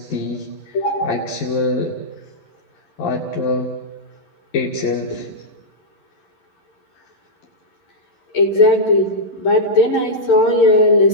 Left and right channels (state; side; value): late; right; 11 ms